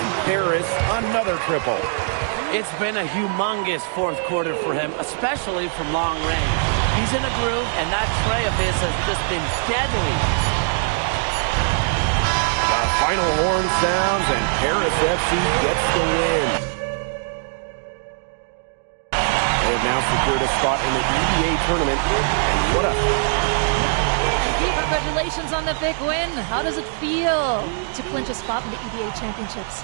Paris another triple. It's been a humongous fourth quarter for him, especially from long range. He's in a groove, and that tray of his has just been deadly. The final horn sounds, and Paris FC gets the win. They have now secured a spot in the EBA tournament, and what a... And congratulations on the big win. How does it feel to clinch a spot in the EBA championships?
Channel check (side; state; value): left; silent; 65 dB below the other